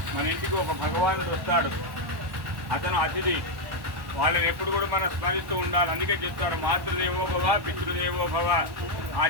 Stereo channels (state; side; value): late; left; 1.1 ms